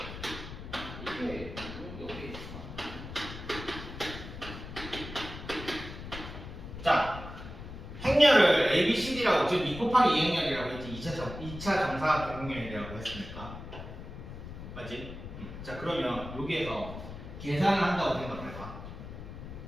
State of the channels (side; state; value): left; noise; rumble, 11 dB below the sound